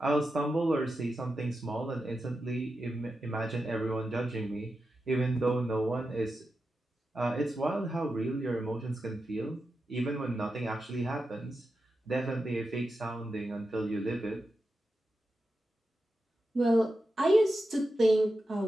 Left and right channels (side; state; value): both; normal; correlation 0.90